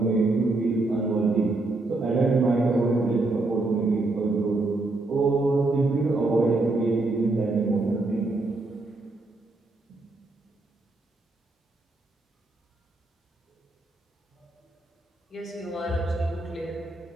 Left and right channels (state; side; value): quieter; left; 3.1 dB